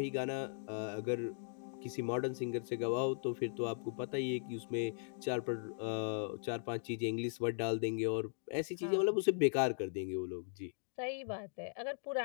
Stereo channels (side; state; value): right; silent; digital silence